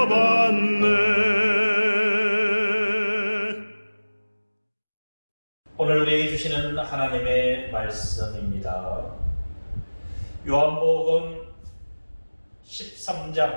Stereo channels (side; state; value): both; inverted; correlation -1.00